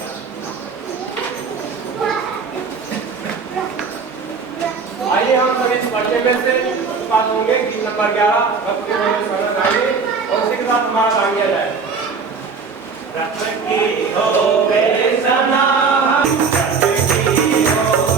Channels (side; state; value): left; quieter; 5.2 dB